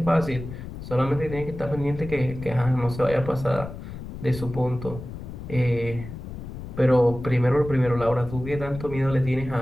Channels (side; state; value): left; noise; rumble, 10 dB below the sound